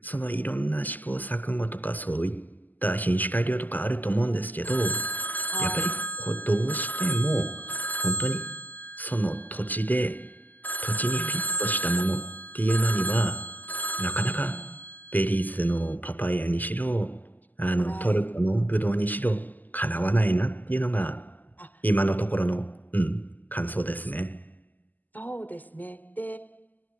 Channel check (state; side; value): late; right; 0.084 ms